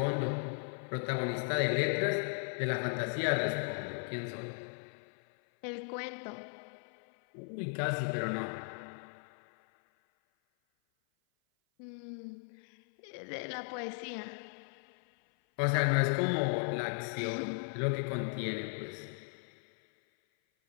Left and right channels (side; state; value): right; silent; 53 dB below the other